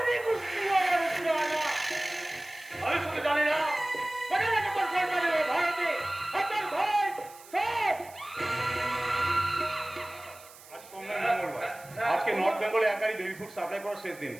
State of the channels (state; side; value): noise; right; hiss, 20 dB below the sound